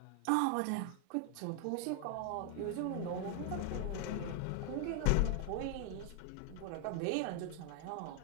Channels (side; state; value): both; different; correlation 0.00